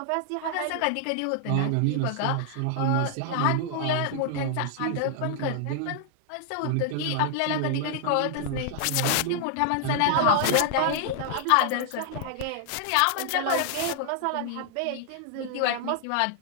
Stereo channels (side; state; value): both; different; correlation 0.00